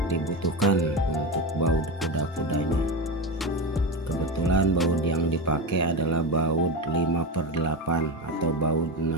dibutuhkan untuk baut kuda-kudanya. Kebetulan baut yang dipakai adalah baut 5/8 atau baut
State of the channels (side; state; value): both; normal; correlation 0.19